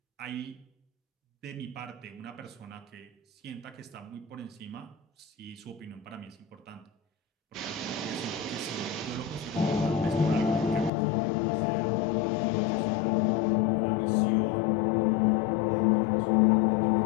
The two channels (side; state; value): right; drops out; at 10.9 s